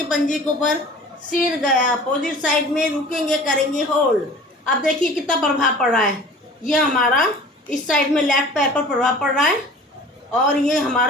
पंजे के ऊपर, सिर गया अपोजिट साइड में, रुकेंगे, करेंगे होल्ड। अब देखिए कितना प्रभाव पड़ रहा है। ये हमारा इस साइड में लेफ्ट पैर पर प्रभाव पड़ रहा है और ये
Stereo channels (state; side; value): normal; both; correlation 0.44